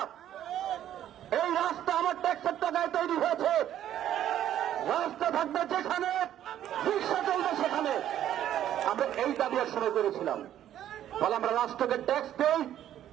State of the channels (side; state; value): left; quieter; 11.4 dB